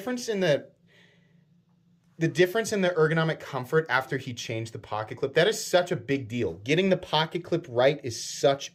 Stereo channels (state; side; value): identical; both; correlation 1.00